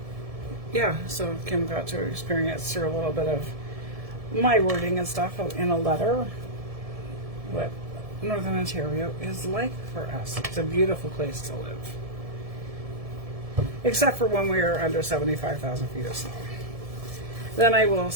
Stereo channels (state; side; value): late; left; 1.7 ms